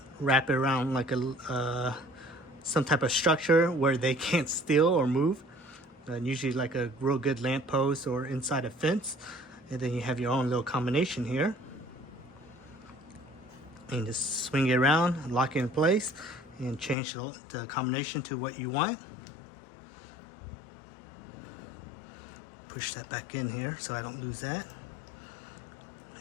wrap it around like a some type of structure where they can't steal or move, usually like a real good lamppost or inside a fence, and then you have your own little combination here, and just swing it around, lock it in place, and change the combination to what you want. Push that back in here so I don't lose that,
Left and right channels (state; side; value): drops out; right; at 16.9 s